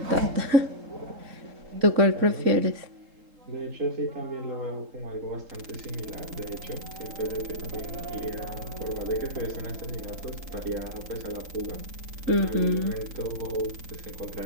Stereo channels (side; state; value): left; late; 3.8 ms